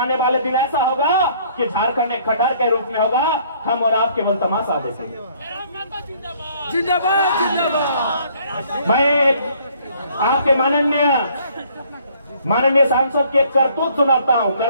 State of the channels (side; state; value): both; inverted; correlation -0.61